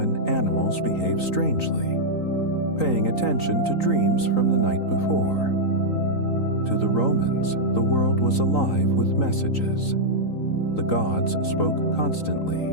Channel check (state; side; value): late; right; 3.9 ms